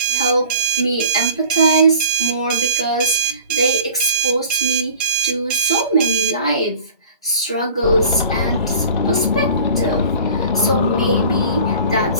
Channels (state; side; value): inverted; both; correlation -0.43